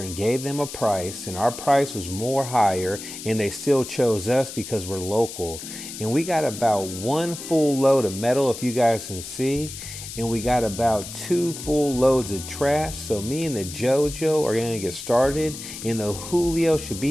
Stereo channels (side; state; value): left; noise; hiss, 10 dB below the sound